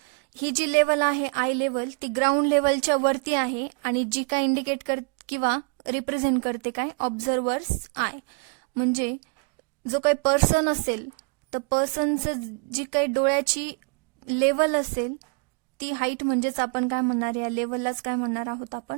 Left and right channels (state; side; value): quieter; left; 33.5 dB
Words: ही जी लेवल आहे आय लेवल ती ग्राउंड लेवलच्या वरती आहे आणि जी काय इंडिकेट किंवा रिप्रेझेंट करते काय, ऑब्झर्वर्स आय. म्हणजे जो काही पर्सन असेल तर पर्सनचं जी काही डोळ्याची लेवल असेल ती हाईट म्हणजेच आपण काय म्हणणार, या लेवललाच काय म्हणणार आहोत